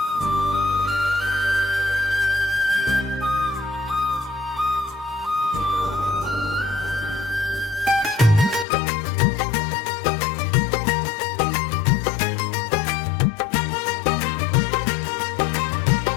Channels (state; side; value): drops out; right; at 8.7 s